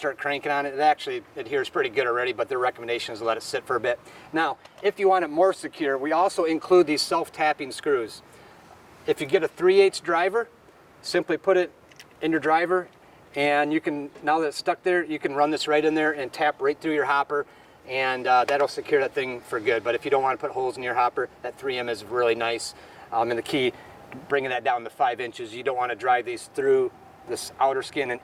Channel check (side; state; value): both; identical; correlation 1.00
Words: cranking on it. It actually adheres pretty good already, but the recommendation is to let it sit for a bit. Now, if you want it more secure, we also include these self-tapping screws. If you get a 3/8 driver, simply put it in your driver, and you can, now that it's stuck there, you can run this right in there and tap right through your hopper, and that'll secure that thing for good. But if you don't want to put holes in your hopper, that 3M is really nice. And the key, bringing that down to 5 inches, you don't want to drive these through this outer skin and